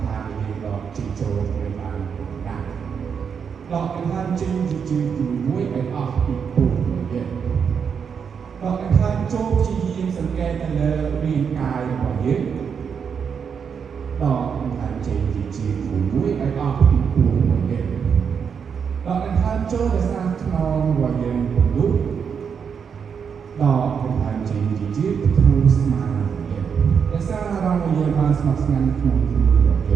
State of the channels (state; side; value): quieter; left; 6.7 dB